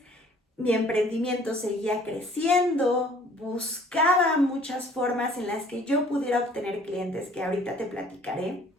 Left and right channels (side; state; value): both; normal; correlation 0.55